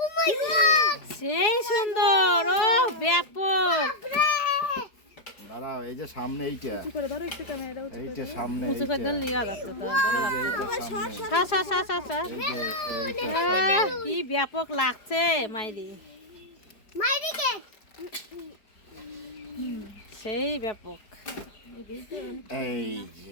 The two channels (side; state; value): right; late; 4.8 ms